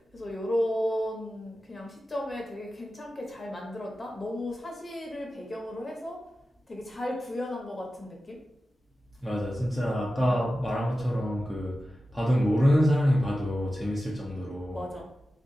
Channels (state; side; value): normal; both; correlation 0.93